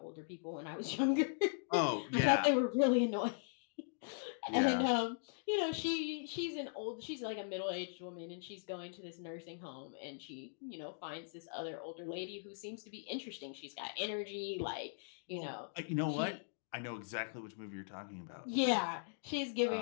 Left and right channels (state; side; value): silent; right; digital silence